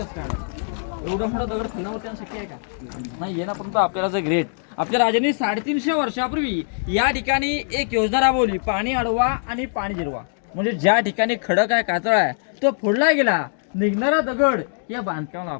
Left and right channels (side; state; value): right; silent; digital silence